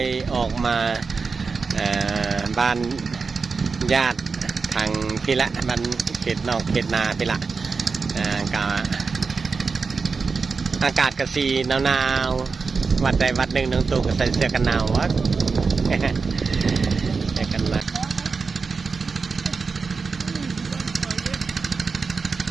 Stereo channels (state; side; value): quieter; left; 4.7 dB